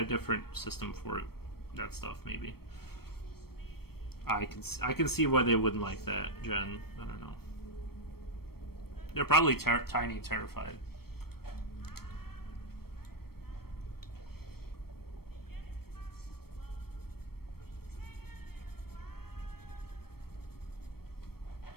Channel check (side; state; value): right; late; 0.95 ms